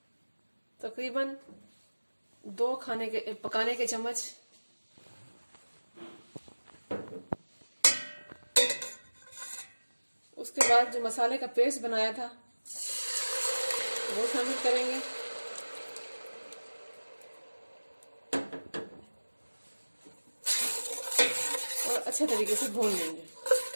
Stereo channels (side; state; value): both; inverted; correlation -1.00